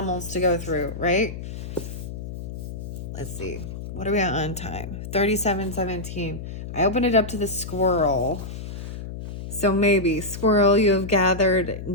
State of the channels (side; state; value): left; noise; hum, 9 dB below the sound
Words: to go through, right? Let's see. What are we at on time? 37:17. I opened it up to the squirrel. So maybe, squirrel, you have gathered